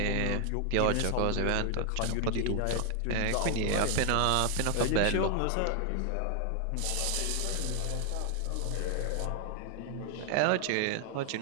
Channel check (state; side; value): different; both; correlation 0.00